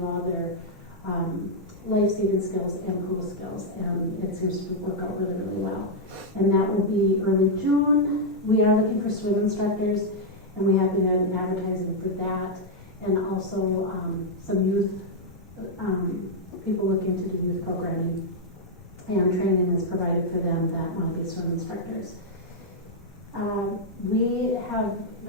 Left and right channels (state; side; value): normal; both; correlation -0.04